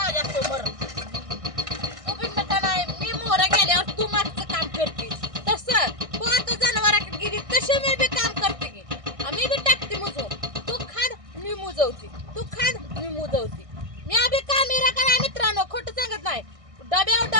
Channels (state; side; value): late; left; 1.6 ms